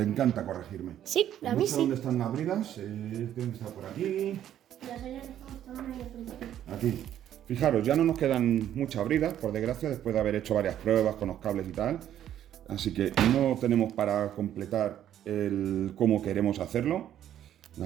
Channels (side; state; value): left; quieter; 11.0 dB